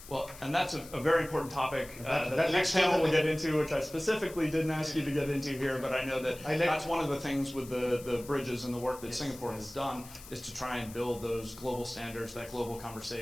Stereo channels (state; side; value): noise; left; hiss, 17 dB below the sound